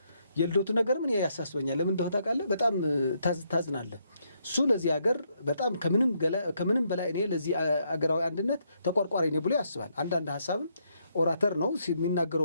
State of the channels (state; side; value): inverted; both; correlation -0.75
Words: የልደቱ ነገር ምን ያሳስበኛል? ለምን እንደሆነ ታውቃለህ? በጣም ታዝናለህ። እሱ ለዚህ ሀገር በጣም ከምንም በላይ እኔ ለዚህ አገራዊ አንድነት ተቆርቋሪ ነኝ ብሎ ያስባል። አንዳንድ ሀሳብም ኦራተር ነው